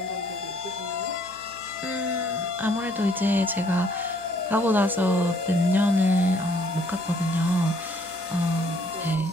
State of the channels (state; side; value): noise; left; hum, 26 dB below the sound